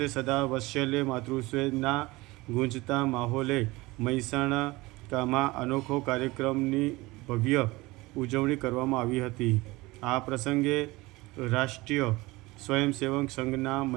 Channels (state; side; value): quieter; left; 21.3 dB